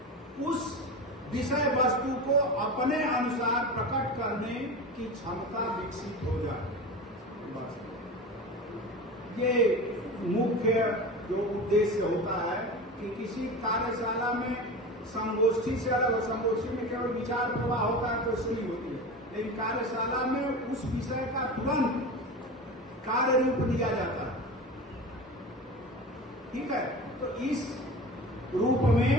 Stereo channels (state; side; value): normal; both; correlation 0.30